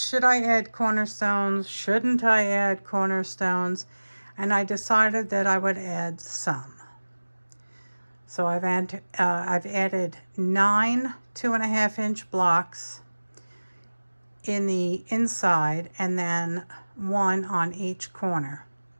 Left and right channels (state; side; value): inverted; both; correlation -1.00